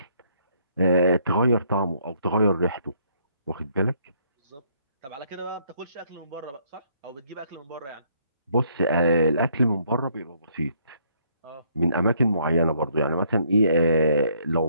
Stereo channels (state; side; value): inverted; both; correlation -0.68